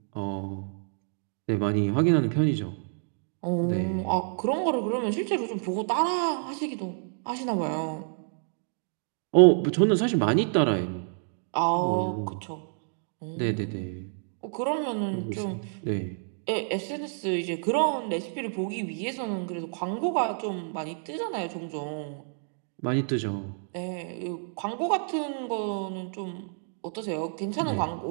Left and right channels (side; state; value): left; silent; digital silence